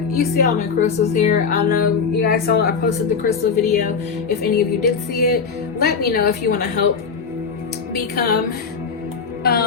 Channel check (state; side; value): quieter; right; 5.6 dB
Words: you see all my crystals here. I know you guys saw I posted the crystal video. If any of you did see it, let me know if you want to help become